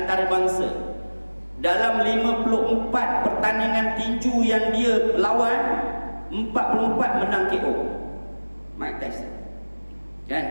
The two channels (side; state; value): both; inverted; correlation -1.00